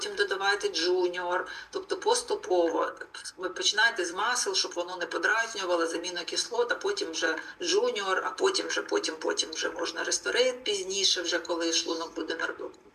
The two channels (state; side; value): identical; both; correlation 1.00